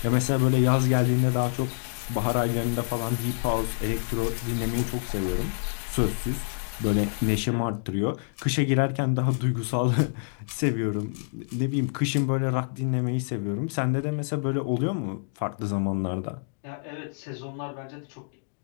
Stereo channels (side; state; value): right; silent; digital silence